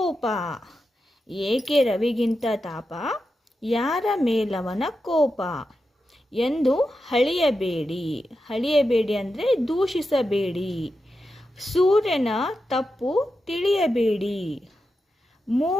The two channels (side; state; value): both; normal; correlation 0.89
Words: ಏಕೆ ರವಿಗಿಂತ ತಾಪ, ಯಾರ ಮೇಲವನ ಕೋಪ ಎಂದು ಹಳಿಯಬೇಡಿ. ಹಳಿಯಬೇಡಿ ಅಂದರೆ ದೂಷಿಸಬೇಡಿ. ಸೂರ್ಯನ ತಪ್ಪು ತಿಳಿಯಬೇಡಿ.